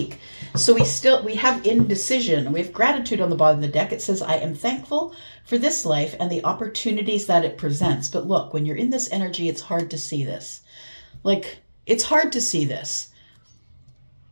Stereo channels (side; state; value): both; inverted; correlation -1.00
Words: So we have indecision. We have gratitude on the bottom of the deck. It says, I am thankful for this life and the opportunities that it presents. But look, when you're in this energy, it's hard to see this. Like, it's hard to see this.